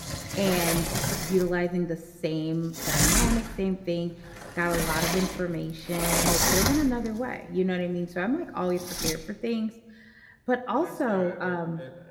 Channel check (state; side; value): identical; both; correlation 1.00